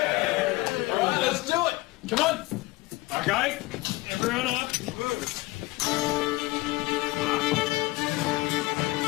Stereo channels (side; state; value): right; quieter; 21.4 dB